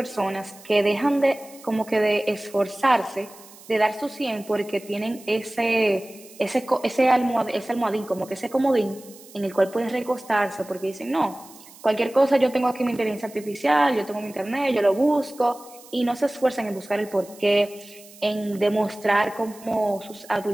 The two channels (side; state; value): right; noise; hiss, 21 dB below the sound